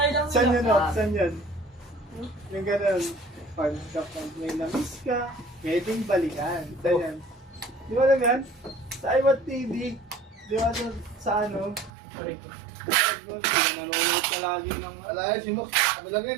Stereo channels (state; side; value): drops out; left; at 11.9 s